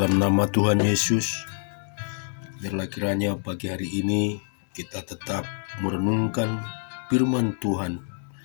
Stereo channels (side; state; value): right; silent; digital silence